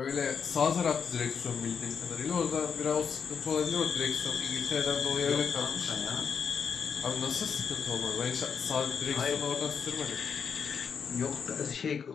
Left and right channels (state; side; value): quieter; right; 6.6 dB